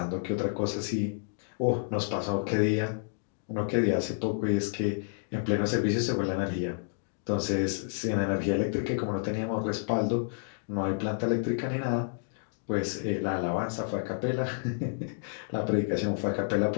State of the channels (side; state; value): right; silent; digital silence